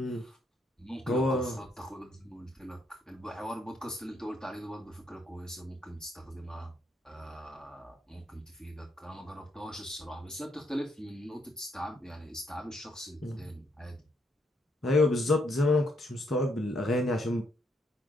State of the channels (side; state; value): both; normal; correlation 0.74